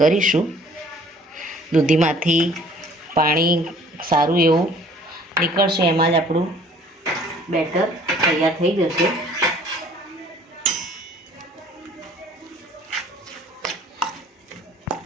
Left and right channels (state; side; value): normal; both; correlation 0.54